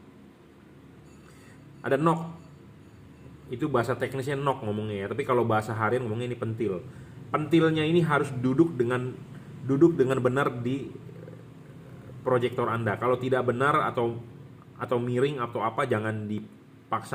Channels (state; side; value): identical; both; correlation 1.00